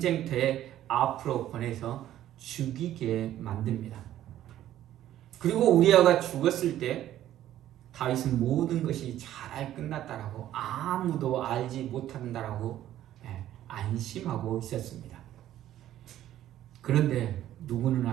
앞으로 보내서 죽이게 만듭니다. 그리고 우리아가 죽었을 때 다윗은 모든 것이 잘 끝났다라고, 아무도 알지 못한다라고 안심하고 있었습니다. 그런데 누구는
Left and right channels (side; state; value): left; quieter; 12.6 dB